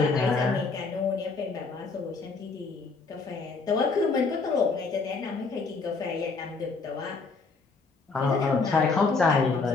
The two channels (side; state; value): right; quieter; 4.3 dB